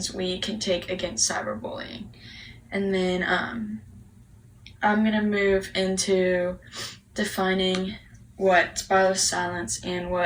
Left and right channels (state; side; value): identical; both; correlation 1.00